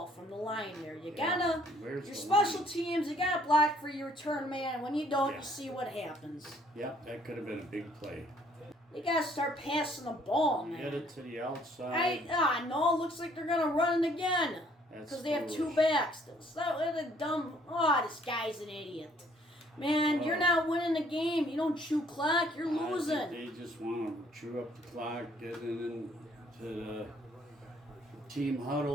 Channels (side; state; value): both; normal; correlation 0.62